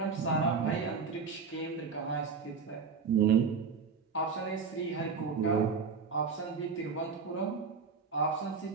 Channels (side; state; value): left; quieter; 5.4 dB